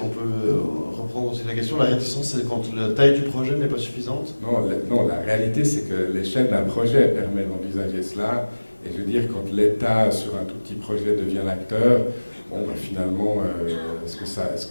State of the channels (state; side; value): inverted; both; correlation -1.00